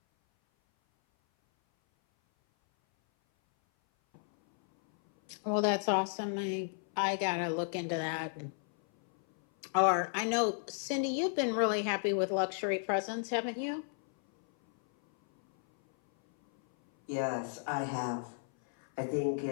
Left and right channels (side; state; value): right; silent; 56 dB below the other